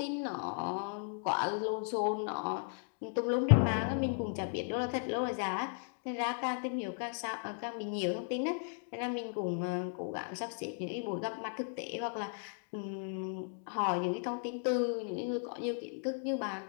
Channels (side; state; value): right; silent; 54 dB below the other